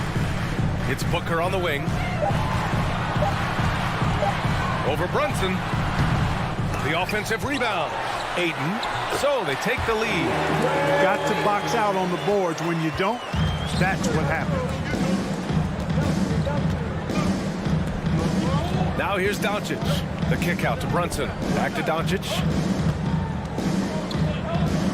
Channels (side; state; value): both; identical; correlation 1.00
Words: It's Booker on the wing. Over Brunson. The offensive rebound. Ayton. So they take the lead. Got to box out on the boards. When you don't, that's what happens. Now here's Doncic. The kick out to Brunson. Back to Doncic.